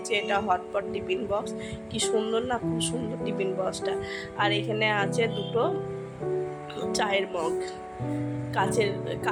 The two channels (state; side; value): identical; both; correlation 1.00